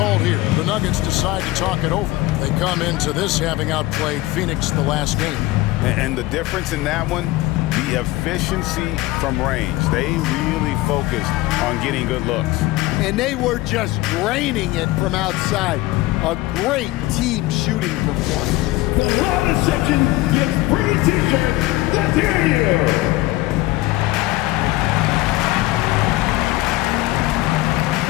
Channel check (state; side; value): quieter; right; 18.4 dB